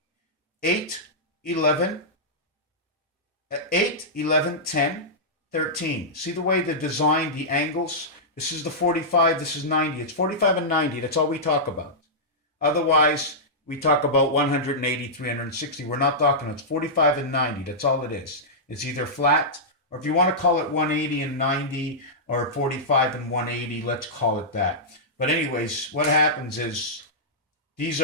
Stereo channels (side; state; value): both; normal; correlation -0.13